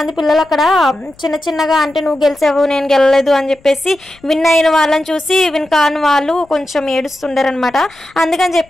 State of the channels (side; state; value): left; noise; rumble, 29 dB below the sound